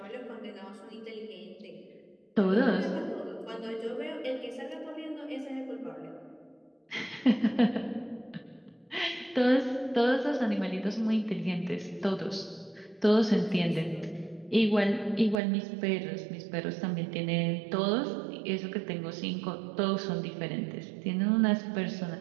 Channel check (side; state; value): left; drops out; at 15.4 s